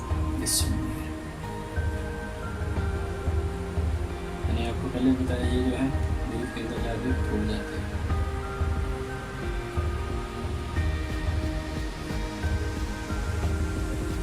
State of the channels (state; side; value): identical; both; correlation 1.00